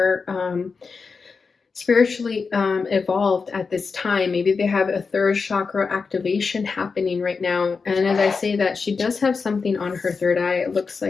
spiritually evolved at this time. Maybe they have a third chakra activation happening right now. And as I say that, she does have something on her third eye. It looks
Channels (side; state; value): right; quieter; 4.9 dB